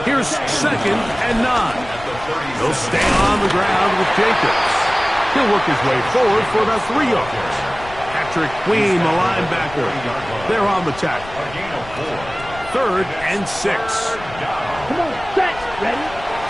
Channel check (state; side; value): noise; left; rumble, 16 dB below the sound